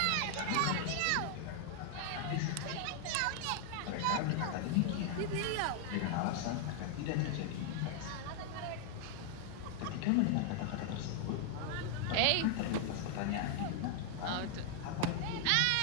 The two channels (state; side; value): different; both; correlation 0.00